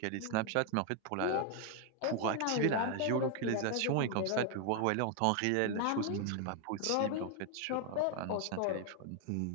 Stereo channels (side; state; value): both; different; correlation 0.00